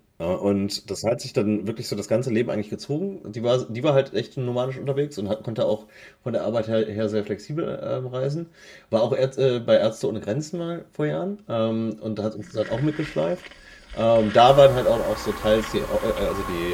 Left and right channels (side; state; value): both; identical; correlation 1.00